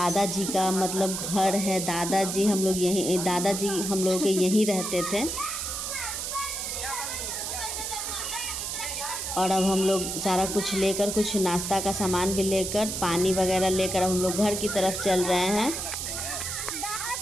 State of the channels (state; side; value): noise; right; hiss, 3 dB below the sound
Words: का मतलब घर है। दादाजी हम लोग के यहीं रहते थे। और अब हम लोग सारा कुछ लेकर, कुछ नाश्ता का सामान भी लेकर, पानी वगैरह लेकर हम लोग घर की तरफ चल रहे हैं।